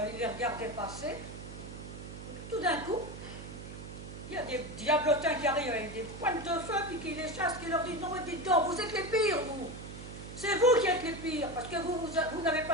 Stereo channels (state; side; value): noise; right; hum, 11 dB below the sound